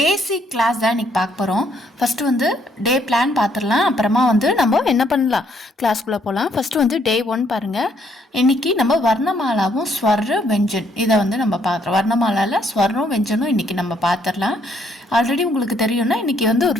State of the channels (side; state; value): both; normal; correlation 0.69